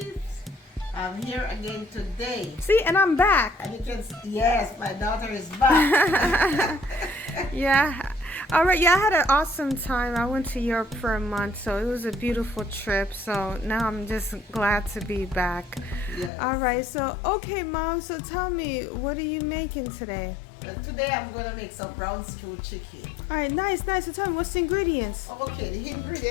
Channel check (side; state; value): right; drops out; at 16.3 s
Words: I'm here again today. See, and I'm back. And you can see, yes, my daughter is back. Yeah. All right. Yeah, I had an awesome time. I went to Europe for a month, so it was a beautiful trip. So now I'm just glad to be back. Yes. All right. So, okay, Mom. So tell me, what are you making today? Today I'm going to make some brown stew chicken. All right. Nice, nice. So tell me, what's the ingredients? Okay, the